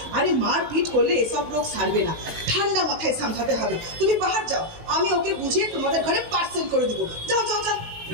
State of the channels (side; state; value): left; late; 18 ms